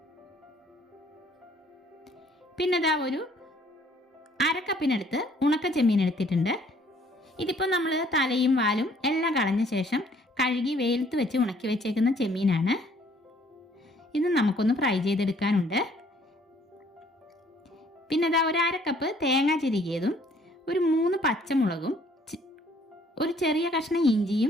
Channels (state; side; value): normal; both; correlation 0.60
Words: പിന്നെ ഒരു അരക്കപ്പിനടുത്ത് ഉണക്ക ചെമ്മീൻ എടുത്തിട്ടുണ്ട്. ഇതിപ്പോൾ നമ്മൾ തലയും വാലും എല്ലാം കളഞ്ഞ ശേഷം കഴുകി വെയിലത്ത് വെച്ച് ഉണക്കി വെച്ചേക്കുന്ന ചെമ്മീനാണ്. ഇത് നമുക്കൊന്ന് ഫ്രൈ ചെയ്തെടുക്കാനുണ്ട്. പിന്നെ ഒരു അരക്കപ്പ് തേങ്ങ ചിരകിയതും ഒരു 3 പച്ചമുളകും ഒരു ചെറിയ കഷ്ണം